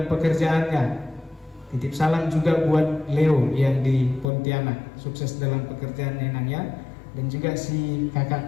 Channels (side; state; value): right; drops out; at 4.2 s